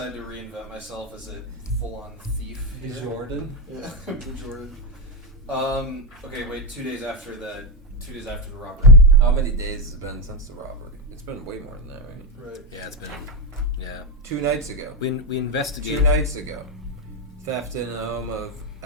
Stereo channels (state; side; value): normal; both; correlation 0.07